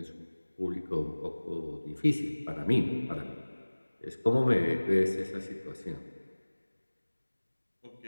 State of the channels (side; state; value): both; inverted; correlation -1.00